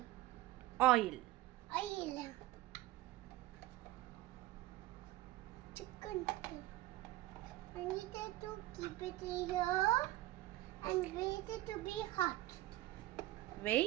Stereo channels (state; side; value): quieter; left; 16.5 dB